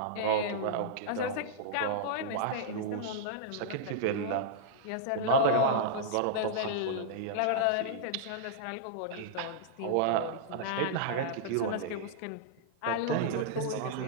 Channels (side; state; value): both; different; correlation -0.02